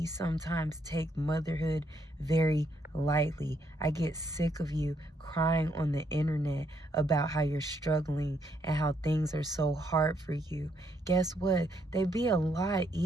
sometimes take motherhood very lightly. I get sick of you crying on the internet about how you're struggling and how things are so hard for you. Guess what? They'd be a lot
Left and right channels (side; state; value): both; normal; correlation 0.74